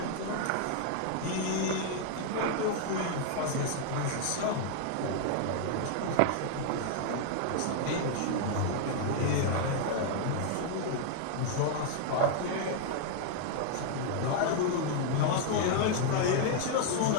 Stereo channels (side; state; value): both; different; correlation 0.00